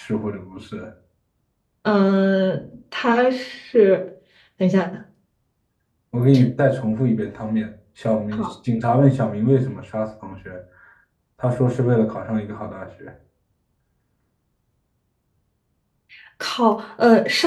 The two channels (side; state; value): both; identical; correlation 1.00